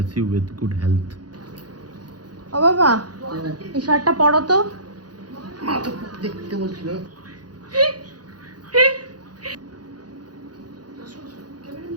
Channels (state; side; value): late; left; 0.69 ms